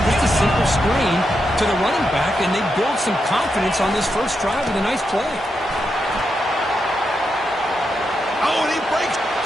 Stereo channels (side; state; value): both; normal; correlation 0.85